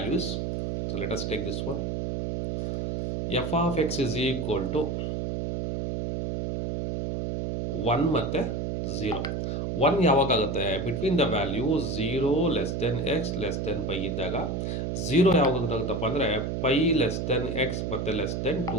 So let us take this one. f of x is equal to 1 ಮತ್ತು 0. 1 ಯಾವಾಗ ಆಗುತ್ತೆ, between the value 0 less than x less than pi ಇದ್ದಾಗ. 0 ಯಾವಾಗ ಆಗುತ್ತಪ್ಪ ಅಂದರೆ ಪೈ ಲೆಸ್ ದೆನ್ ಎಕ್ಸ್ ಮತ್ತು less than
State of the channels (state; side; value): noise; right; hum, 1 dB below the sound